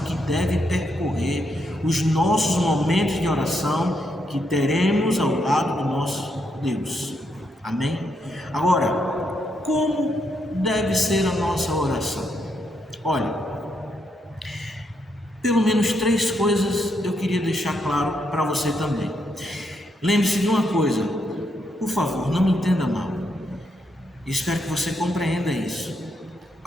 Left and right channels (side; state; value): both; normal; correlation 0.79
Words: deve percorrer os nossos momentos de oração que teremos ao lado do nosso Deus. Amém? Agora, como deve ser a nossa oração? Olha, pelo menos três coisas eu queria deixar claro para você também. Lembre-se de uma coisa, por favor, não me entenda mal. Espero que você compreenda isso.